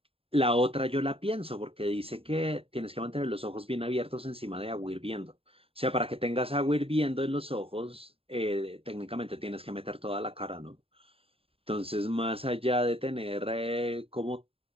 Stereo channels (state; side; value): late; left; 0.27 ms